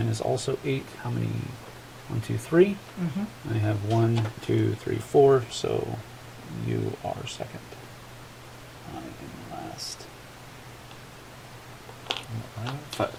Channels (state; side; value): identical; both; correlation 1.00